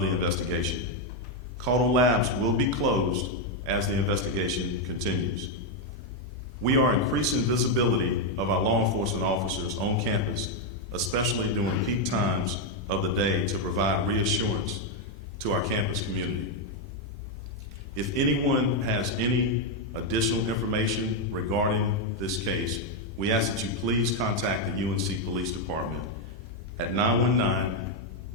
the investigation. Tailei Labs will be closed as the investigation continues. We are increasing visibility of our law enforcement officers on campus, especially during peak times of the day, to provide reassurance to our If anyone has any additional information regarding this case, we ask that you please contact the UNC Police Department at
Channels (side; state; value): both; normal; correlation 0.02